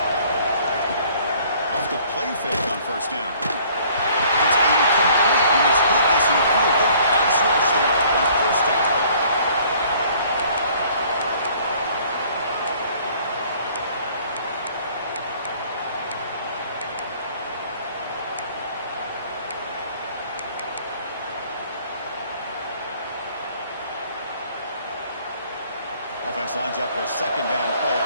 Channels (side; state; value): both; inverted; correlation -0.56